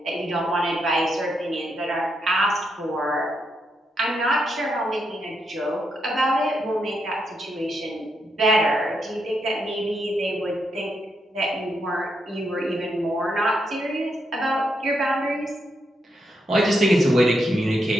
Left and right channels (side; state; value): both; normal; correlation 0.81